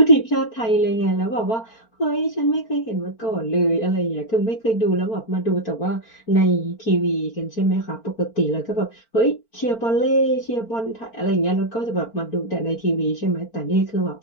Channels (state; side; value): late; right; 4.4 ms